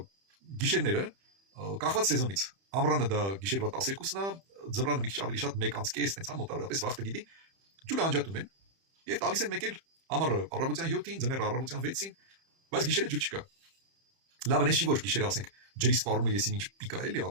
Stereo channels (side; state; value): left; late; 31 ms